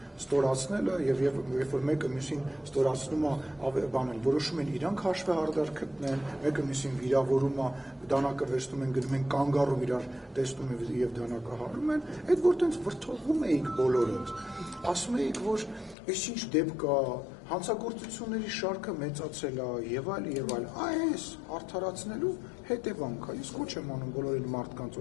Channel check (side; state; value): right; drops out; at 16.0 s